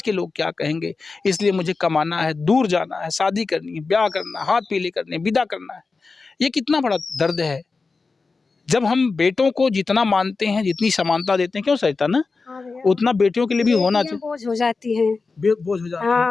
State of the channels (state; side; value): quieter; right; 4.2 dB